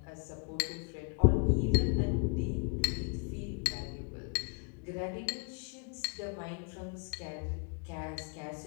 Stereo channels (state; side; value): quieter; right; 34.1 dB